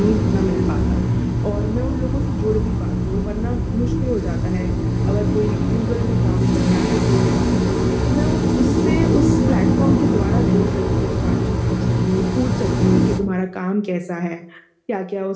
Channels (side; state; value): both; identical; correlation 1.00